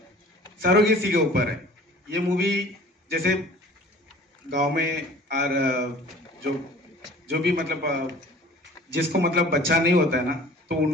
सरोगेसी के ऊपर है। ये मूवी जैसे गांव में और जो भी मतलब जिसको मतलब बच्चा नहीं होता है ना, तो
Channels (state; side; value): normal; both; correlation 0.47